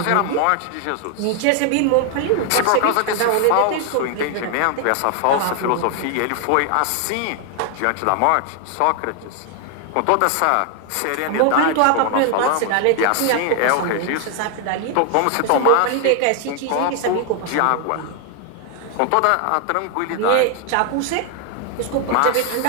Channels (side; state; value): both; different; correlation 0.00